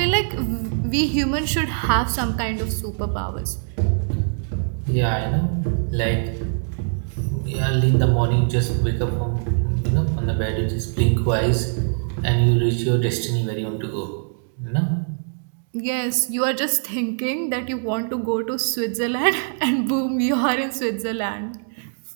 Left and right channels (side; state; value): left; silent; digital silence